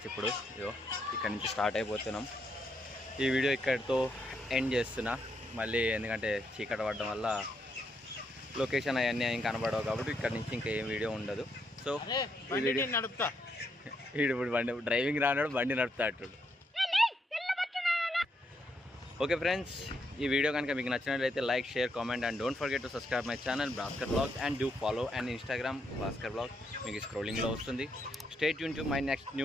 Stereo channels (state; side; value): normal; both; correlation 0.78